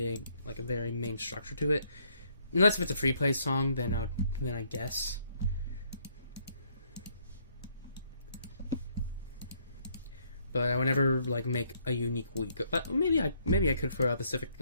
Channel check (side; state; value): both; inverted; correlation -0.69